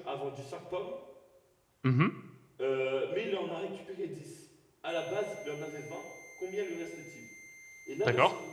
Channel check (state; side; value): identical; both; correlation 1.00